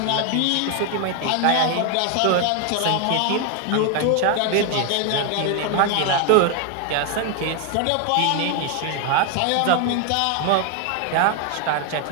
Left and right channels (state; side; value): different; both; correlation 0.01